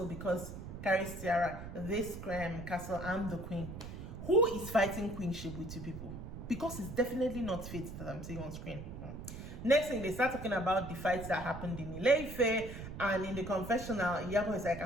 because carry Tiara, this castle, I'm the queen. Who is fighting queenship with you people? Because it's definitely not Faith that I'm seeing on screen. Next thing, they start talking about the fights that happened in Ile-Ife, and in the confessional, Iyabo is like,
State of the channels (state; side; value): noise; right; rumble, 9 dB below the sound